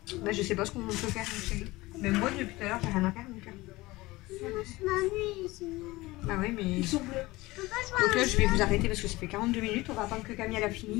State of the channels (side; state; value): right; quieter; 20.2 dB